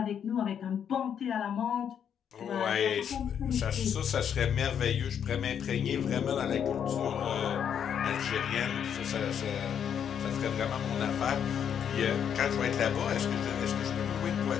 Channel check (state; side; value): quieter; right; 8.4 dB